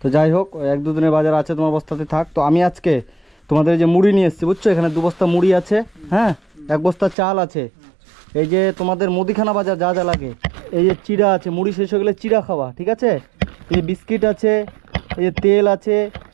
তো যাই হোক, 1-2 দিনের বাজার আছে, তোমার বস্তাতে থাক। তো আমি আজকে তোমাদের যে মুড়ি নিয়ে এসেছি, বুঝছো? এখানে 2 বস্তা মুড়ি আছে, হ্যাঁ, 1 বস্তা চাল আছে, এই যে তোমাদের মুদিখানা বাজার যা যা লাগে, এই যে চিড়া আছে, মুড়ি শেষ হয়ে গেলে চিড়া খাওয়া, ঠিক আছে? এই যে বিস্কিট আছে, এই যে তেল আছে,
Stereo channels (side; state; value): left; drops out; at 7.2 s